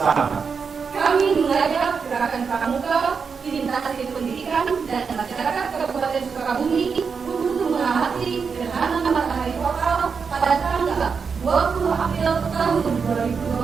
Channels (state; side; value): quieter; left; 5.7 dB